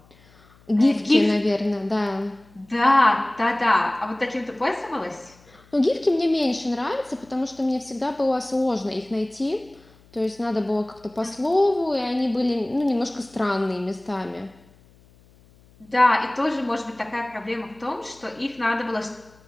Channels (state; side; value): noise; left; hum, 28 dB below the sound